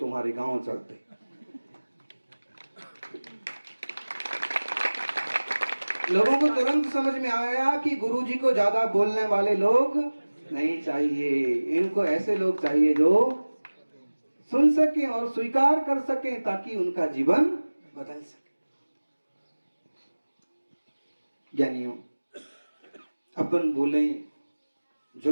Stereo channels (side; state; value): both; inverted; correlation -1.00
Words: गांव चलते। लोगों को तुरंत समझ में आया कि गुरुजी को ज्यादा बोलने वाले लोग नहीं चाहिए, इनको ऐसे लोग चाहिए जो सुन सके और स्वीकार कर सके ताकि उनका जीवन बदल सके। ज्ञानियों, अपन बोलें,